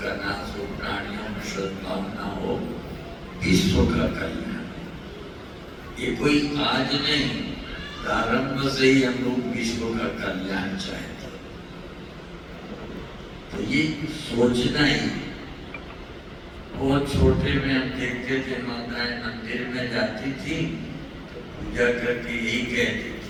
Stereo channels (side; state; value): both; identical; correlation 1.00